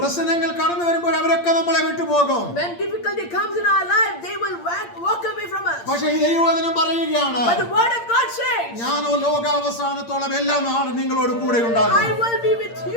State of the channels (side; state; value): right; late; 8.7 ms